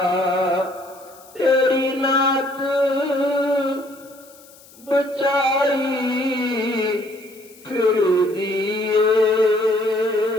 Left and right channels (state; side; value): noise; left; hiss, 24 dB below the sound